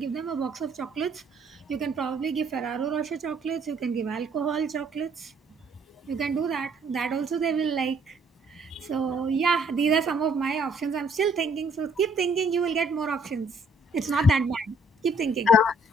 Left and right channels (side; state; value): both; normal; correlation 0.64